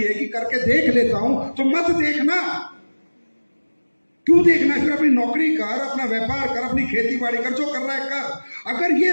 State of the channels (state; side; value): inverted; both; correlation -1.00